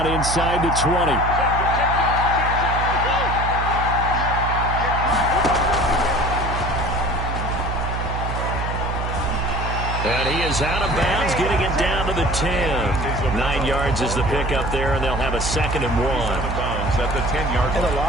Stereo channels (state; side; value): noise; right; hum, 3 dB below the sound